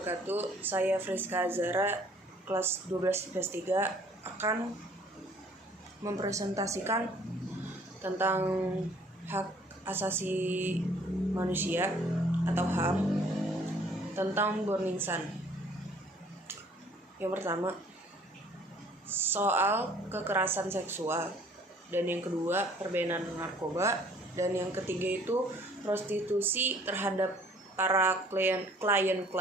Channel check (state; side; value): normal; both; correlation 0.57